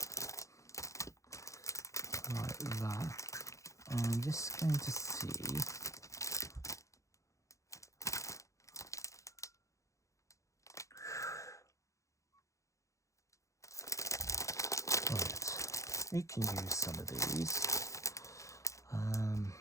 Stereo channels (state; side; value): late; right; 0.15 ms